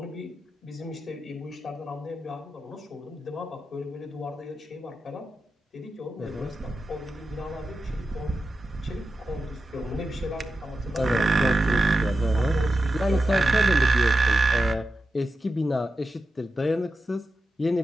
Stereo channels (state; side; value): normal; both; correlation 0.90